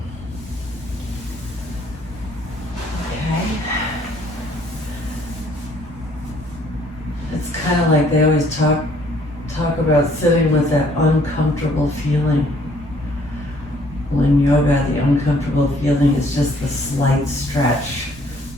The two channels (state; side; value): normal; both; correlation 0.62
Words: Okay. It's kind of like they always talk about sitting with that uncomfortable feeling. Well, in yoga, the uncomfortable feeling is just the slight stretch,